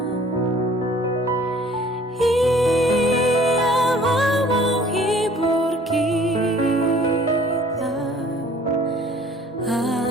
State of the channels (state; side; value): normal; both; correlation 0.53